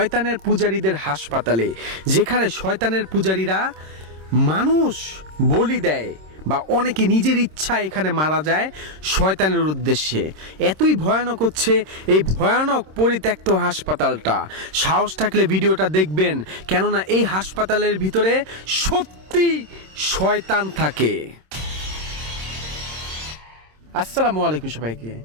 পূজারীদের হাসপাতালে, যেখানে শয়তানের পূজারীরা মানুষ বলি দেয় বা অনেকে নিজের ইচ্ছা এখানে মারা যায় শয়তানের উদ্দেশ্যে। এতই ভয়ানক হচ্ছে এই ভয়ানক পরিত্যক্ত হাসপাতালটা। সাহস থাকলে ভিডিওটা দেখবেন, কেননা এই হাসপাতালের ভিতরে সত্যি শয়তান থাকে। আসসালামু আলাইকুম সবাইকে।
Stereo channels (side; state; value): left; late; 26 ms